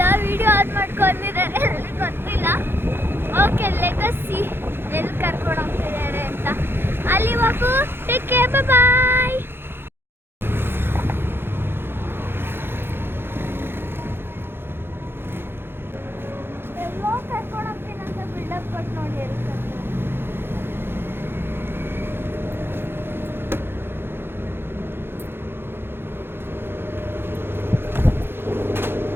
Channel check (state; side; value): late; left; 0.11 ms